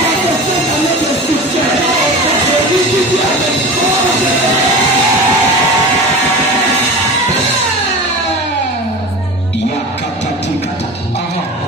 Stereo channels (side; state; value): both; normal; correlation 0.32